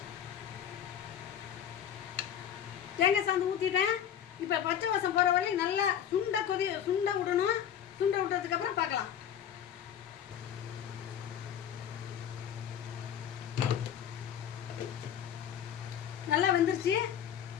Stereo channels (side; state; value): right; quieter; 9.4 dB